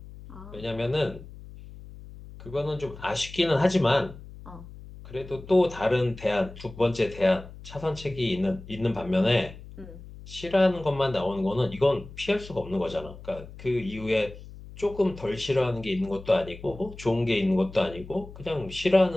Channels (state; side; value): noise; left; hum, 16 dB below the sound